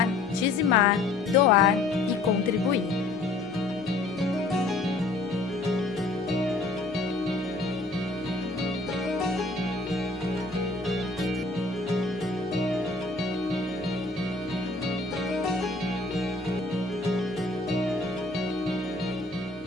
dizimar, doar e contribuir.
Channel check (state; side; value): quieter; right; 3.3 dB